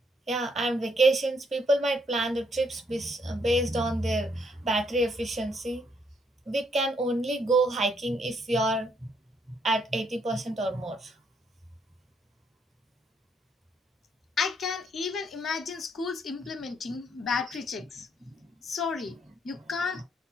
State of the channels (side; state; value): both; normal; correlation 0.72